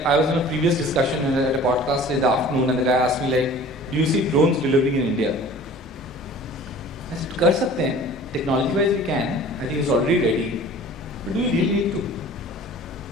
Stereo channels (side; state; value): both; normal; correlation 0.45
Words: I was in a previous discussion at a podcast in the afternoon, and the guy asked me like, "Do you see drones delivering in India?" I said, "Kar sakte hain. Technology-wise, we can. I think it's already ready. But do we really need to?"